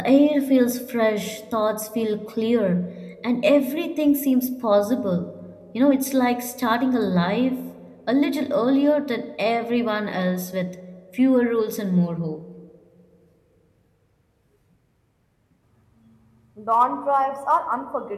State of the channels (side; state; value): both; identical; correlation 1.00